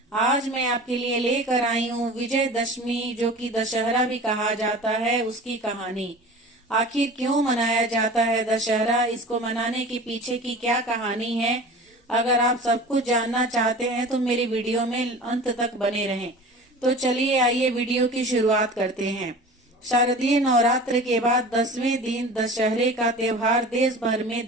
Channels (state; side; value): normal; both; correlation 0.38